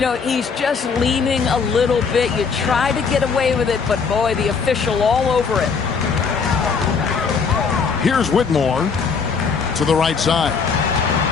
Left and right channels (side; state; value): right; quieter; 5.5 dB